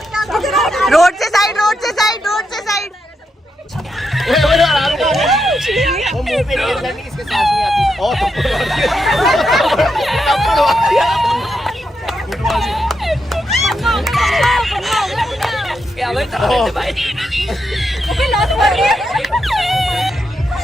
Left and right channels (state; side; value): normal; both; correlation 0.83